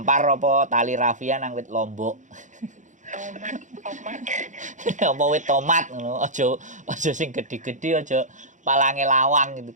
apa tali rafia nang wit lombok. Tomat. Apa wit tomat ngono. Aja sing gede-gede, aja palange lawang gitu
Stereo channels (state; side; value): late; left; 0.36 ms